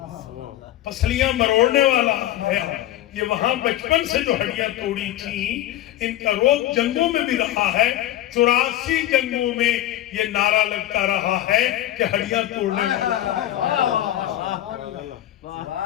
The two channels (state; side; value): quieter; right; 13.5 dB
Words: پسلیاں مروڑنے والا ہے۔ یہ وہاں بچپن سے جو ہڈیاں توڑی تھیں ان کا روگ جنگوں میں بھی رہا ہے، 84 جنگوں میں یہ نعرہ لگتا رہا ہے کہ ہڈیاں توڑنے والا۔